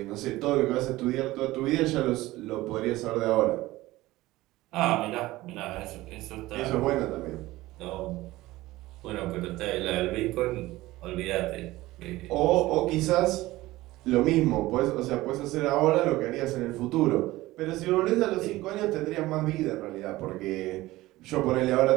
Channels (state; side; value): quieter; left; 18.0 dB